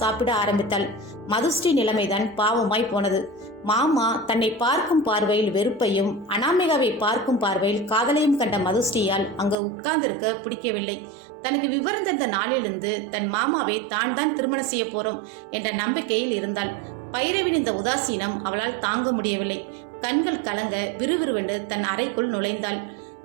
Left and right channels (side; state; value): left; drops out; at 9.6 s